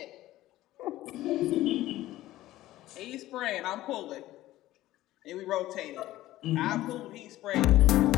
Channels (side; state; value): right; quieter; 15.6 dB